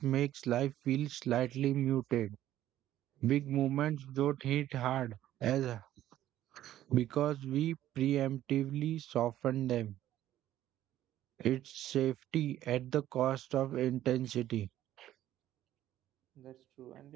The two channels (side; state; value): left; quieter; 13.0 dB